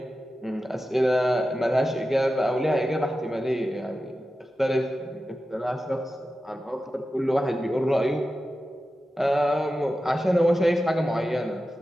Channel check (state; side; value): normal; both; correlation 0.92